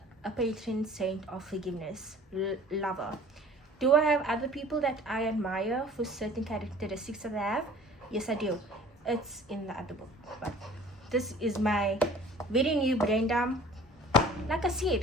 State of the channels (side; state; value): both; normal; correlation 0.48